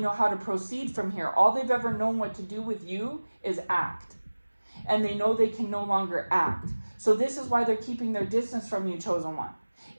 how to proceed from here. All they've ever known what to do with you is act. And they know they can no longer act. So this is why they're keeping their distance from you, chosen one.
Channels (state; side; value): inverted; both; correlation -1.00